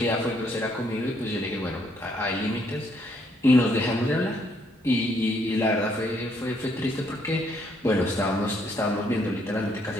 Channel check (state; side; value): normal; both; correlation 0.70